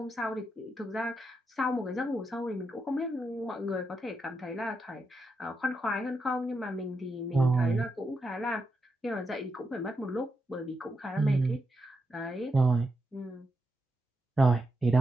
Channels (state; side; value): normal; both; correlation 0.84